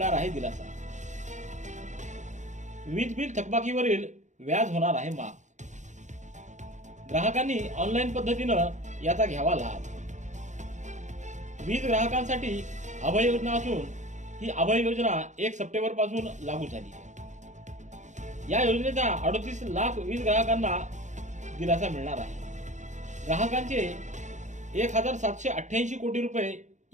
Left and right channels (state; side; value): late; left; 0.35 ms